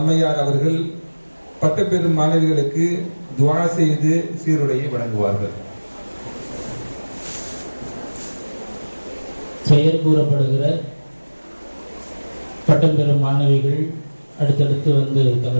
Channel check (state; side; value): inverted; both; correlation -1.00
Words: அவர்கள் பட்டம் பெறும் மாணவிகளுக்கு துஆ செய்து சீருடையை வழங்குவார்கள். பெயர் கூறப்படுகிற பட்டம் பெறும் மாணவிகள் அடுத்தடுத்து வந்து